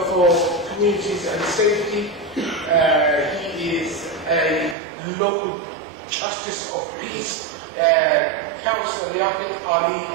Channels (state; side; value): drops out; left; at 4.8 s